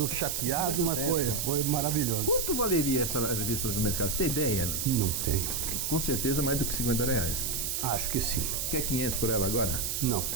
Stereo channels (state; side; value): noise; right; hiss, 1 dB below the sound